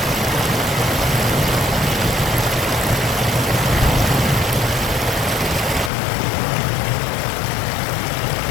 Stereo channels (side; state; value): right; drops out; at 5.9 s